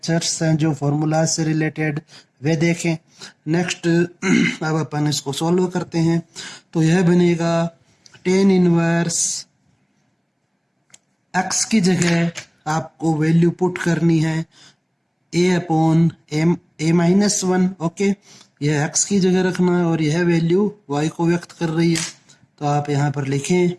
हैं जो फॉर्मूलाज से रिलेटेड, वे देखें। नेक्स्ट अब अपन इसको सॉल्व करते हैं। तो यह बनेगा टेन इनवर्स x की जगह आपको वैल्यू पुट करनी है a upon a minus 1। Okay, यह x की जगह रखना है और यह वैल्यू y को व्यक्त कर रही है, तो आप यहाँ पर लिखें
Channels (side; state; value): both; identical; correlation 1.00